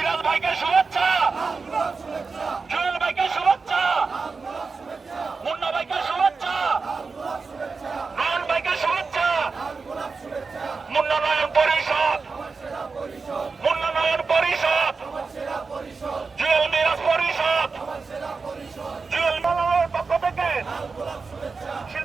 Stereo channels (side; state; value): left; quieter; 4.5 dB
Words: ভাইকে শুভেচ্ছা, জুয়েল ভাইকে শুভেচ্ছা, মুন্না ভাইকে শুভেচ্ছা, নয়ন ভাইকে শুভেচ্ছা, উন্নয়ন পরিষদ, উন্নয়ন পরিষদ, জুয়েল মিরাজ পরিষদ, জুয়েল মালাওয়ের পক্ষ থেকে,